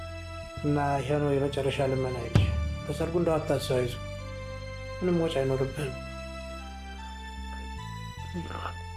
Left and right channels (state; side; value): identical; both; correlation 1.00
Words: እና ይሄ ነው የመጨረሻ ልመና። በሰርጉ እንደው አታስይዙ፣ ምንም ወጪ አይኖርብህም።